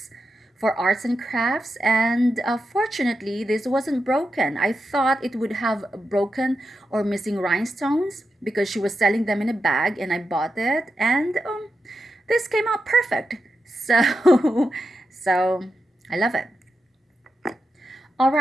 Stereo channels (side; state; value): both; normal; correlation 0.88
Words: for arts and crafts, and fortunately this wasn't broken. I thought it would have broken or missing rhinestones because she was selling them in a bag, and I bought it, and this came out perfect. So so I love it. All